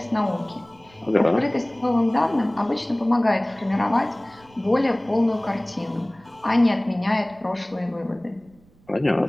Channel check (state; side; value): noise; right; rumble, 29 dB below the sound